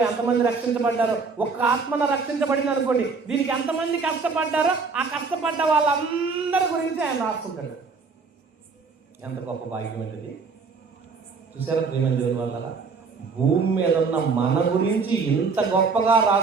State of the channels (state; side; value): quieter; left; 4.7 dB